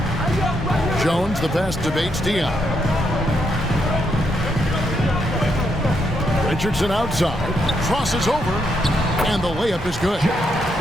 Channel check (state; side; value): normal; both; correlation 0.78